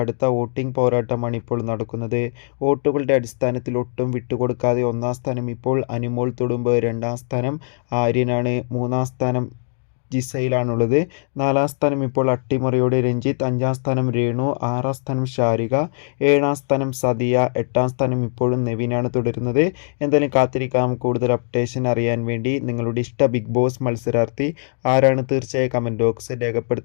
വോട്ടിംഗ് പോരാട്ടമാണ് ഇപ്പോൾ നടക്കുന്നത്. വോട്ടുകളുടെ അടിസ്ഥാനത്തിൽ ഒട്ടും വിട്ടുകൊടുക്കാതെ ഒന്നാം സ്ഥാനം ഇപ്പോൾ അനിമോൾ തൊടുമ്പ്, രണ്ടാം സ്ഥാനം ആര്യനാണ്, മൂന്നാം സ്ഥാനം ജിസയിലാണുള്ളത്. നാലാം സ്ഥാനം ഇപ്പോൾ അട്ടിമറിയോടെ രഞ്ജിത്ത്, അഞ്ചാം സ്ഥാനം രേണു, ആറാം സ്ഥാനം ഷാരിക, ഏഴാം സ്ഥാനം സദിയ, എട്ടാം സ്ഥാനം ഇപ്പോഴും നെവിനാണ് തുടരുന്നത്. എന്തായാലും കാത്തിരിക്കാം കൂടുതൽ അപ്ഡേഷൻ അറിയാൻ വേണ്ടി. നിങ്ങളുടെ ഇഷ്ട ബിഗ് ബോസ് മത്സരാർത്ഥി ആരാണ്? തീർച്ചയായും കമൻറ്റ് ബോക്സിൽ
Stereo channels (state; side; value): silent; right; digital silence